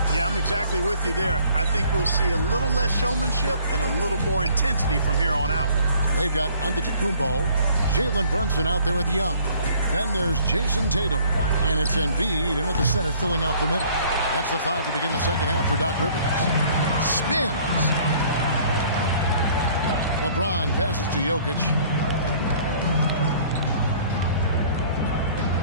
Yeah, I'm exactly with you there. I think we'll see a little less showmanship and a little more intensity from here on out. They've got Antetokounmpo, Jalen Brunson out there with Young. Then there's Jason Tatum, and it's Embiid in at the center filling out the middle. That's the 5 to begin the second half for Doc Rivers. Spins. LeBron passes to Jokic.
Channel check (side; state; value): both; inverted; correlation -0.56